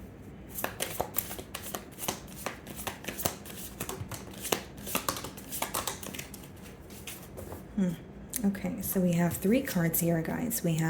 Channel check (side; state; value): both; identical; correlation 1.00